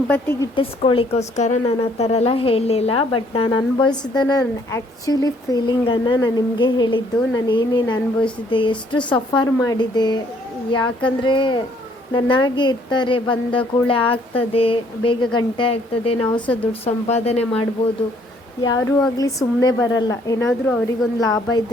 ಗಿಟ್ಟಿಸ್ಕೊಳ್ಳಿಕ್ಕೋಸ್ಕರ ನಾನು ಆ ಥರ ಎಲ್ಲ ಹೇಳಲಿಲ್ಲ, ಬಟ್ ನಾನು ಅನುಭವಿಸಿದ್ದನ್ನು, ಆ್ಯಕ್ಚುಲಿ ಫೀಲಿಂಗನ್ನು ನಾನು ನಿಮಗೆ ಹೇಳಿದ್ದು. ನಾನು ಏನೇನು ಅನುಭವಿಸಿದ್ದೆ, ಎಷ್ಟು ಸಫರ್ ಮಾಡಿದೆ. ಯಾಕಂದರೆ ನನ್ನಾಗೆ ಇರ್ತಾರೆ, ಬಂದ ಕೂಡಲೇ ಆಗ್ತದೆ, ಬೇಗ ಗಂಟೆ ಆಗ್ತದೆ, ನಾವು ಸಹ ದುಡ್ಡು ಸಂಪಾದನೆ ಮಾಡ್ಬೋದು. ಯಾರೂ ಆಗಲಿ ಸುಮ್ಮನೆ ಬರಲ್ಲ, ಏನಾದರೂ ಅವರಿಗೊಂದು ಲಾಭ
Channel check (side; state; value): both; normal; correlation 0.64